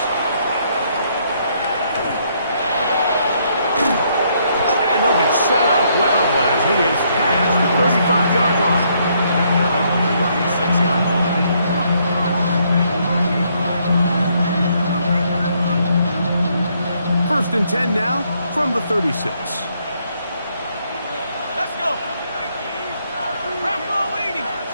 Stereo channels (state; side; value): inverted; both; correlation -0.71